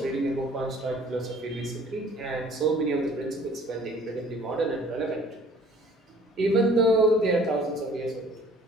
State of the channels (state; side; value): normal; both; correlation 0.53